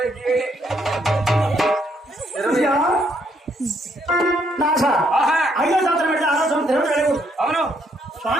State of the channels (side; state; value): both; normal; correlation 0.72